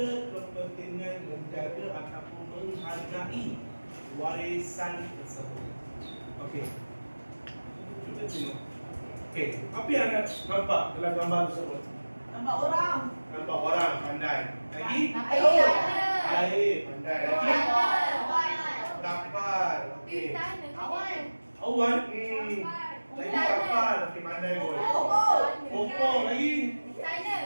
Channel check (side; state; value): both; inverted; correlation -1.00